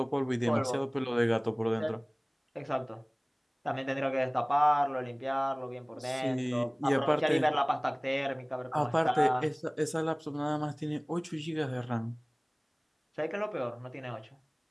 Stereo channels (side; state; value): both; identical; correlation 1.00